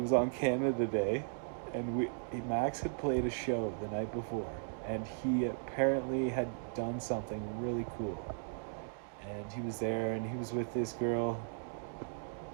on Canada Day, and Max had played a show the night before, and he apparently had done something really cool. And he was there, and he was with this girl,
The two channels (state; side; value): silent; left; digital silence